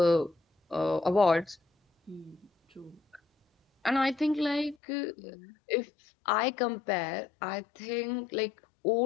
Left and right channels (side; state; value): right; drops out; at 4.8 s